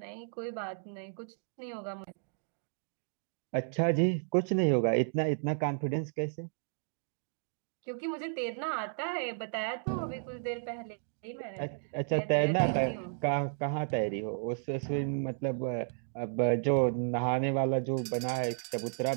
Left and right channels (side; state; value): left; silent; digital silence